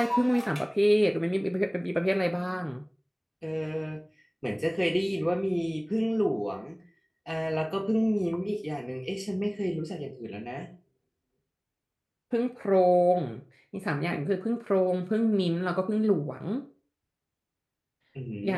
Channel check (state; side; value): identical; both; correlation 1.00